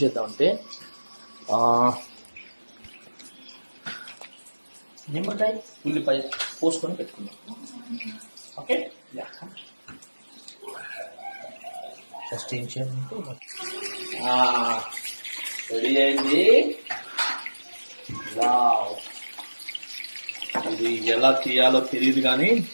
చేద్దామంటే నిమ్మకాయ ఉల్లిపాయ పోసుకొని పెట్టుకుందాం. ఓకే, ఫస్ట్ ఏం చేయాలంటే రెడీ అయింది. వావ్, ఇది ఎలా తీయాలో తెలియదు కానీ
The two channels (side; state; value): both; inverted; correlation -1.00